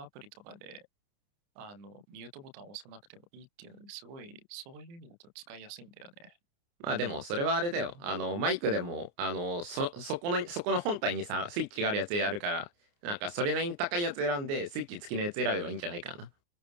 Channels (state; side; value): late; left; 29 ms